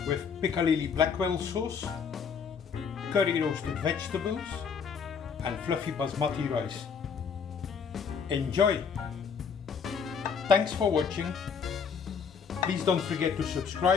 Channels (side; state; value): right; quieter; 6.4 dB